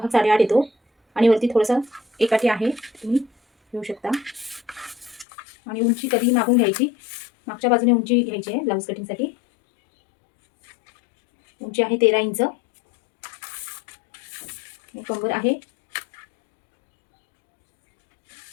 8.5 येतो आणि वरती थोडंसं एकाठी आहे, तुम्ही घेऊ शकता. आणि उंची कधी मागून घ्यायची, मागच्या बाजूने उंची घ्यायची आहे ब्लाऊज कटिंगसाठी. उंची आहे 13 इंच. कंबर आहे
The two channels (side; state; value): right; drops out; at 5.2 s